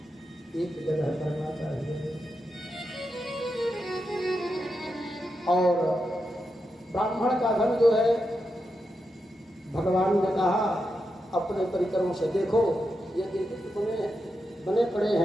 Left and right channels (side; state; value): both; normal; correlation 0.87